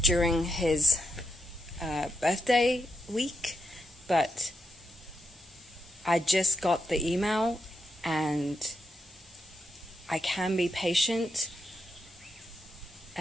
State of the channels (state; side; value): normal; both; correlation 0.83